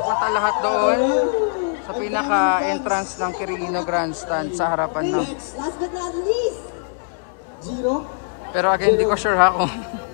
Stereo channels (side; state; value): right; silent; digital silence